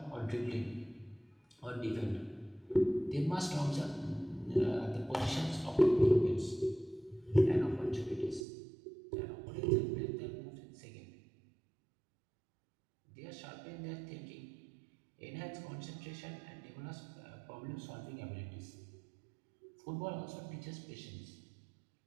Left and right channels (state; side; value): drops out; left; at 8.5 s